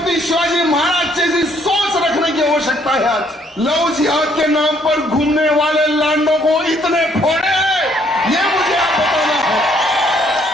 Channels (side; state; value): both; normal; correlation 0.66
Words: शिवाजी महाराज जैसी सोच रखने की आवश्यकता है। आज लव जिहाद के नाम पर घूमने वाले लांडों को इतने फोड़े, ये मुझे आप बताना है।